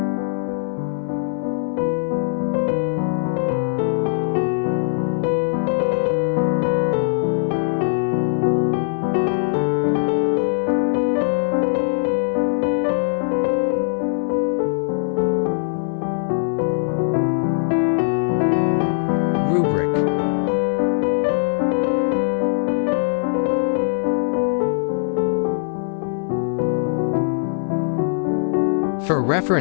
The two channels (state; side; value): silent; right; 62 dB below the other